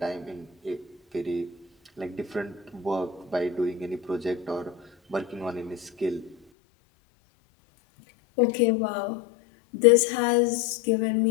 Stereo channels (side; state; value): right; drops out; at 6.4 s